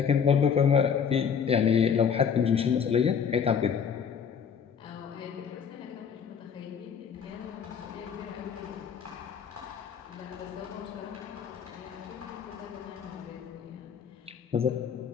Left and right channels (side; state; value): right; quieter; 7.1 dB